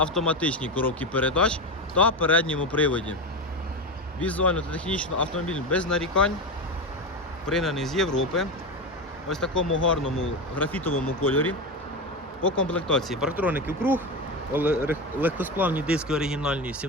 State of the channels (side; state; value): both; normal; correlation 0.19